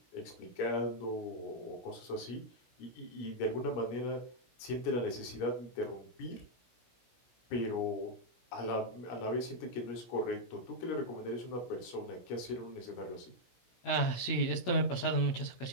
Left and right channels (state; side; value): late; right; 16 ms